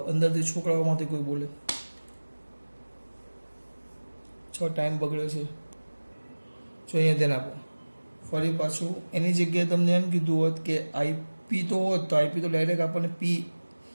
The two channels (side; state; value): both; inverted; correlation -1.00